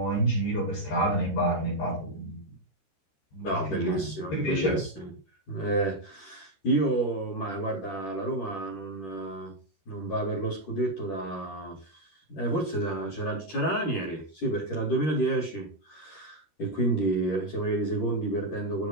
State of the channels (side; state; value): right; late; 13 ms